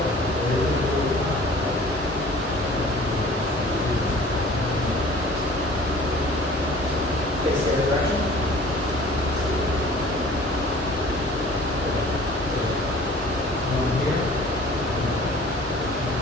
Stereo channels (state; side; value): normal; both; correlation 0.47